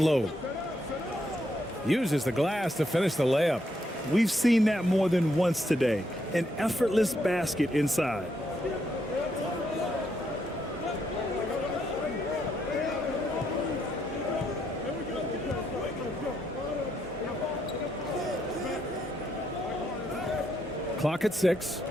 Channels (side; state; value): both; normal; correlation 0.77